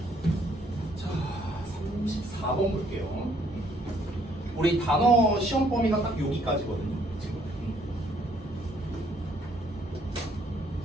자, 34번 볼게요. 우리 단어 시험 범위가 딱 여기까지거든요. 지금.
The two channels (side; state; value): both; normal; correlation 0.66